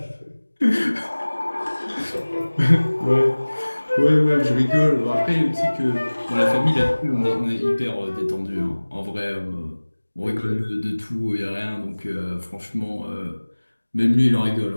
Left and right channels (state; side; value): inverted; both; correlation -1.00